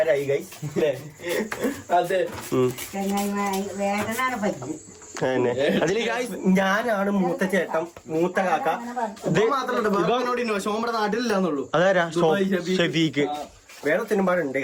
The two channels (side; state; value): both; identical; correlation 1.00